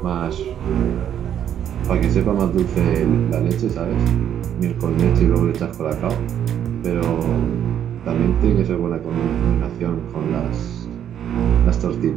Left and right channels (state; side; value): quieter; left; 9.7 dB